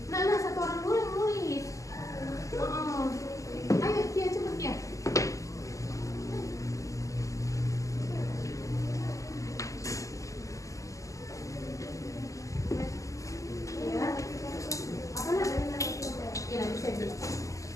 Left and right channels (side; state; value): right; late; 0.16 ms